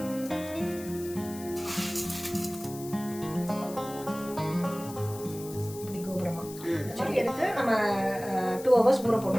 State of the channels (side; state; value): left; noise; hiss, 15 dB below the sound